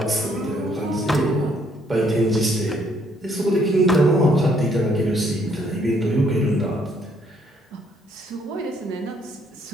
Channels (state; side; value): normal; both; correlation 0.68